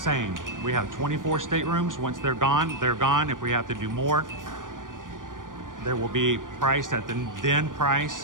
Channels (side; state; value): left; late; 0.89 ms